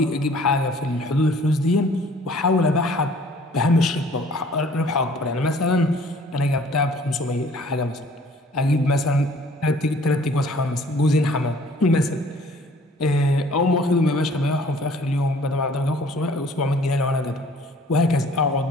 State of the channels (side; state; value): both; normal; correlation 0.54